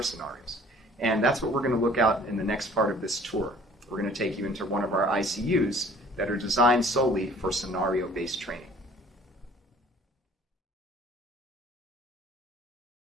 scenarios. And that's what we're going to look at in the next part of this tour. We're going to take you into one of our ICUs that are designed solely for scenario-based training.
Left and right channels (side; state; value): both; normal; correlation 0.52